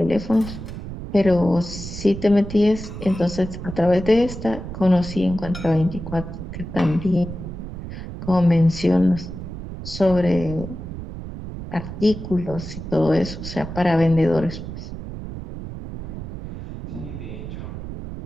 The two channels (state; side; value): noise; right; rumble, 9 dB below the sound